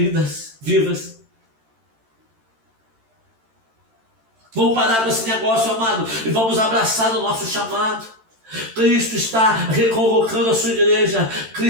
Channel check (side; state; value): left; late; 13 ms